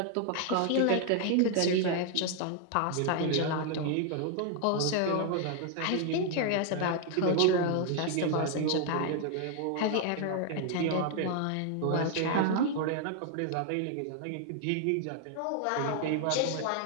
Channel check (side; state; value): both; different; correlation 0.00